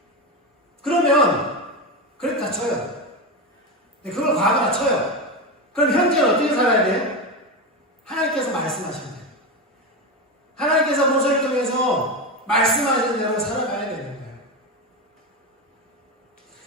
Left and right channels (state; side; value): normal; both; correlation 0.16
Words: 그러면 그랬다 쳐요. 그걸 과거라 쳐요. 그럼 현재는 어떻게 살아야 돼요? 하나님께서 말씀하시는 거예요. 하나님께서 모세를 통해서 말씀하시는 대로 살아가야 되는 거예요.